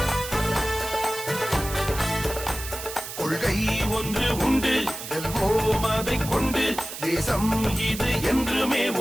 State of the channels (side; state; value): right; noise; hiss, 9 dB below the sound